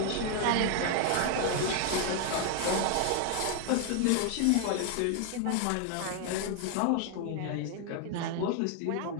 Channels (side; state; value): both; different; correlation 0.01